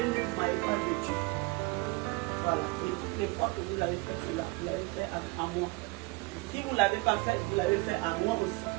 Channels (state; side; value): quieter; left; 24.9 dB